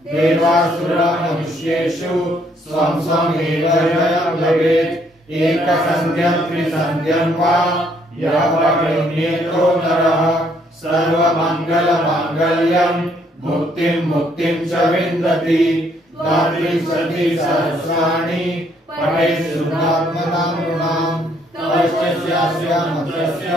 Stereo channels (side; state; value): both; normal; correlation 0.68